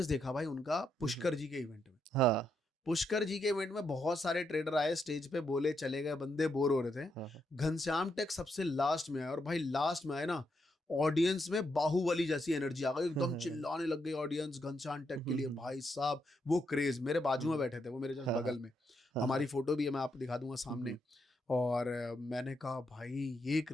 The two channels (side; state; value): both; normal; correlation 0.80